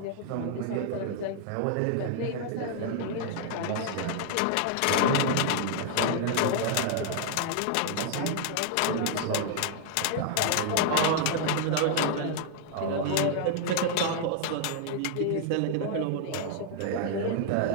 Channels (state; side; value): different; both; correlation 0.00